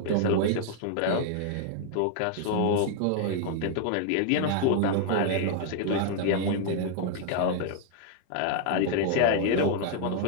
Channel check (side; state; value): both; different; correlation 0.00